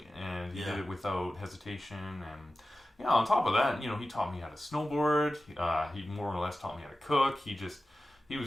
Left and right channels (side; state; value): both; normal; correlation 0.94